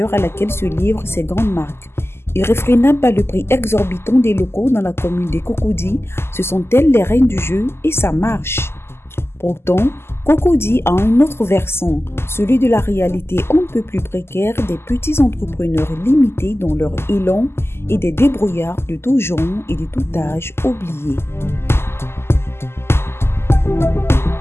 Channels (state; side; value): late; right; 0.12 ms